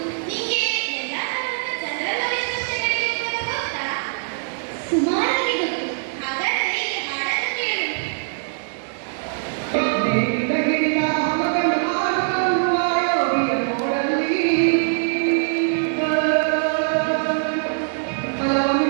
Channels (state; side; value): silent; left; 62 dB below the other